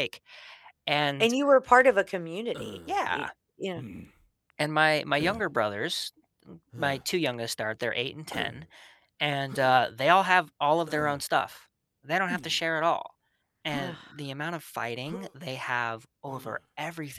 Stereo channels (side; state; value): both; identical; correlation 1.00